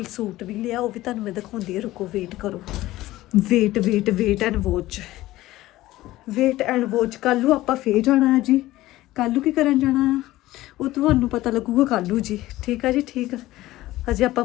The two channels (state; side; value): quieter; right; 16.6 dB